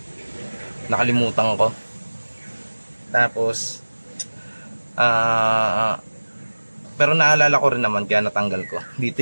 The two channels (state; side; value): inverted; both; correlation -1.00